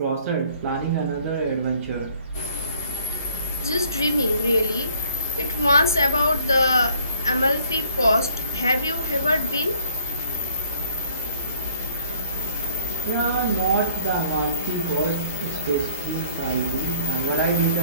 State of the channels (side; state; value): both; inverted; correlation -0.58